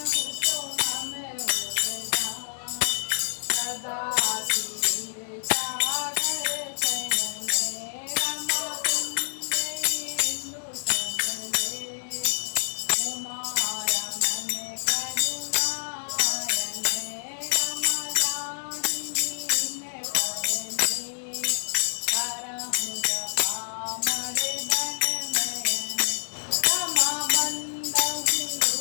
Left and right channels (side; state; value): right; silent; digital silence